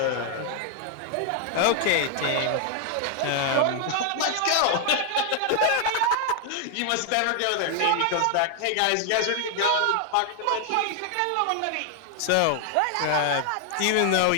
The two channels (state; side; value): different; both; correlation 0.00